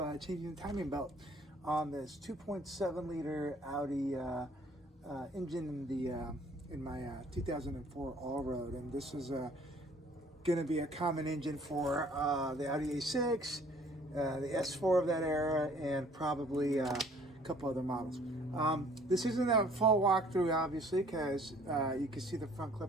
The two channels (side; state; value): both; normal; correlation 0.56